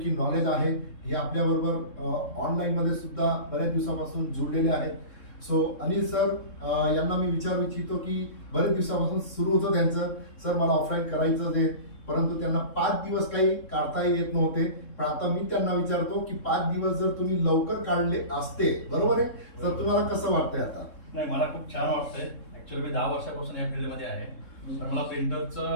नॉलेज आहे. हे आपल्याबरोबर ऑनलाईनमध्ये सुद्धा बऱ्याच दिवसापासून जुळलेले आहेत. सो अनिल सर यांना मी विचारू इच्छितो की बरेच दिवसापासून सुरू होतं त्यांचं, सर मला ऑफलाईन करायचं आहे, परंतु त्यांना 5 दिवस काही काढता येत नव्हते. पण आता मी त्यांना विचारतो की 5 दिवस जर तुम्ही लवकर काढले असते, बरोबर आहे, तर तुम्हाला कसं वाटतंय आता? नाही, मला खूप छान वाटतंय. ऍक्च्युअली मी 10 वर्षापासून या फील्डमध्ये आहे. पण मला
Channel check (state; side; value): late; right; 3.7 ms